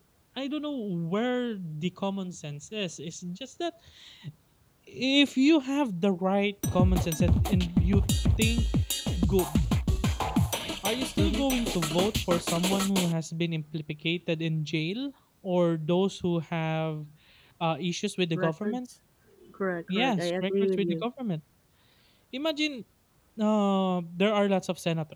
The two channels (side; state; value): both; identical; correlation 1.00